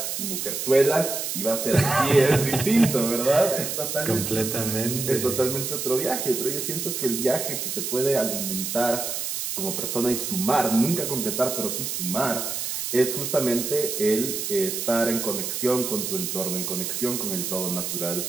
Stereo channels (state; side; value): noise; right; hiss, 3 dB below the sound